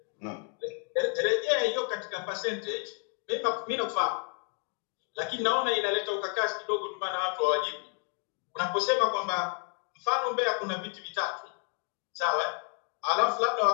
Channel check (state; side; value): quieter; right; 37.2 dB